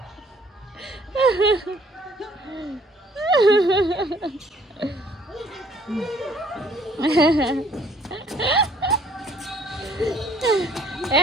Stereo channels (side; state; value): both; normal; correlation 0.60